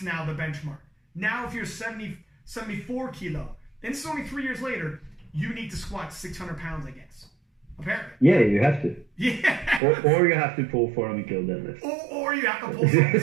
now the benchmark. Now, if you're 74 kilo, and this is only 3 years later, you need to squat 600 pounds, I guess. Apparently. Yeah, you have to. Yeah. Or you have to pull 400 kilo deadlift. Or you have to pull something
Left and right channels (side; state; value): left; drops out; at 9.8 s